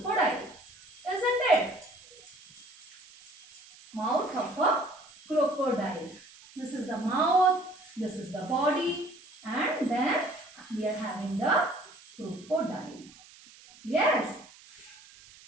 isn't it? Mouth of a crocodile. This is the mouth, this is the body, and then we are having the crocodile. Yes.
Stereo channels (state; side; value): noise; right; hiss, 22 dB below the sound